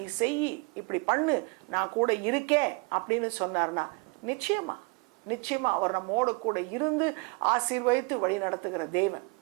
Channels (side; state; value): left; quieter; 29.9 dB